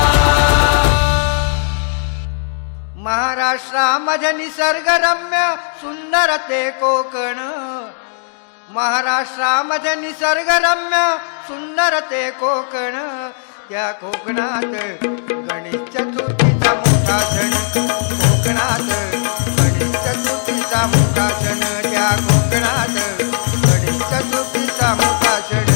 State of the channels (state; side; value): silent; right; digital silence